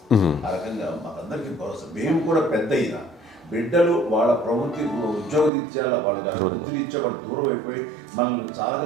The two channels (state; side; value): drops out; left; at 5.5 s